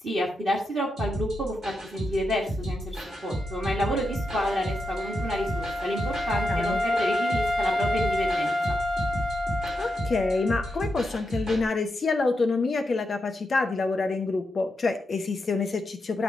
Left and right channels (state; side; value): normal; both; correlation 0.86